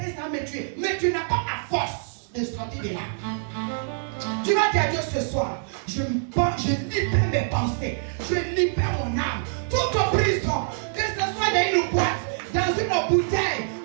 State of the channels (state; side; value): silent; left; digital silence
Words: et ça me tue. Mais tu n'as pas la force de sortir de là. Tu vas dire à Dieu ce soir, je libère mes pensées, je libère mon âme. Toute prison, que ce soit dans une boîte, dans une bouteille,